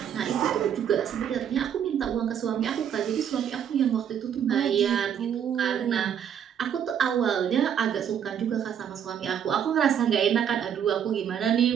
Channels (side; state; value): left; quieter; 8.8 dB